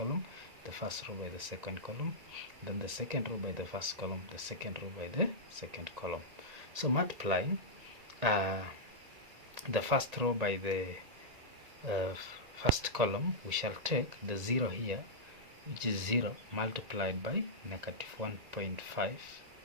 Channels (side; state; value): left; late; 1.9 ms